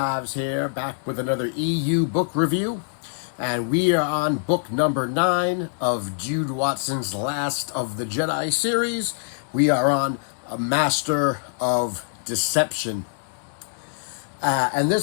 here, back with another EU book review. And we are on book number 9 of Jude Watson's Last of the Jedi series. We are on A Master of Deception. And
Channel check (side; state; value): right; silent; digital silence